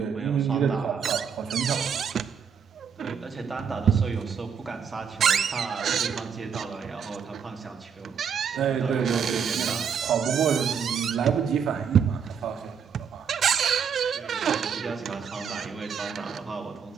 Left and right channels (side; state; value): left; quieter; 7.0 dB